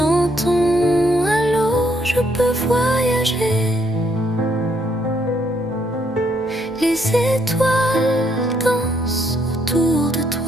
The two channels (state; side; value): normal; both; correlation 0.71